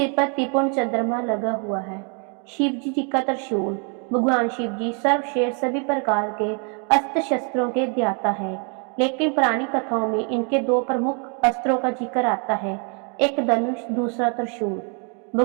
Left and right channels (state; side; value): quieter; left; 38.7 dB